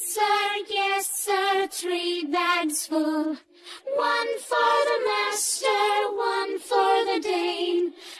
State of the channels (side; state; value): both; identical; correlation 1.00